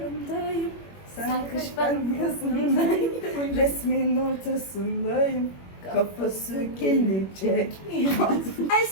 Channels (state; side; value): late; right; 21 ms